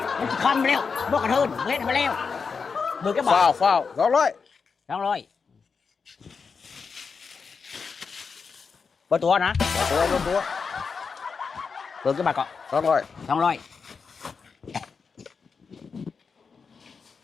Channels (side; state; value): right; quieter; 5.4 dB